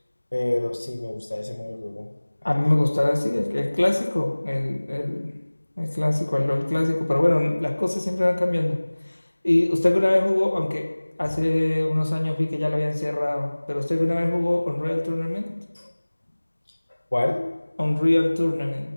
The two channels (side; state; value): both; inverted; correlation -1.00